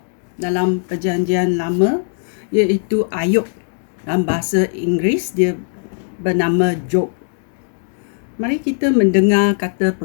dalam perjanjian lama iaitu Ayub. Dalam bahasa Inggeris dia bernama Job. Mari kita mendengar kata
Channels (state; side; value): silent; right; 61 dB below the other